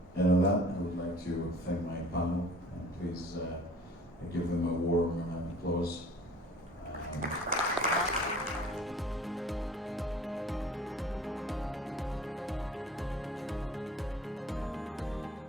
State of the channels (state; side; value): normal; both; correlation 0.49